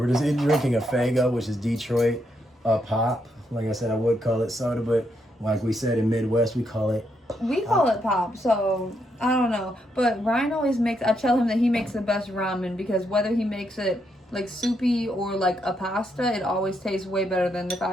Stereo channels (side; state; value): both; normal; correlation 0.78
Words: just drinking a Fago, which is Detroit pop. Like I said, I would call it soda, but like we said in Midwest, we call it. We call it pop, so I don't know. But Ryan always makes. I tell him that he makes the best ramen because whether he makes it like soupy or like a pasta, it always tastes way better than if